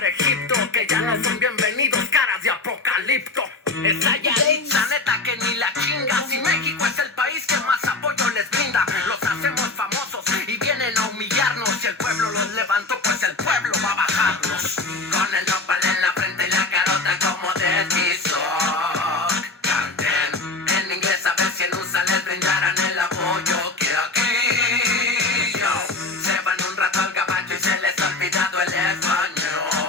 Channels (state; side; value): quieter; right; 3.4 dB